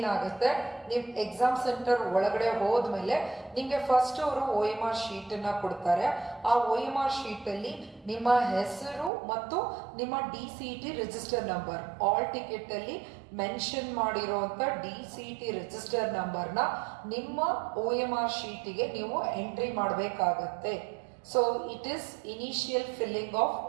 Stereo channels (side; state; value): left; drops out; at 9.1 s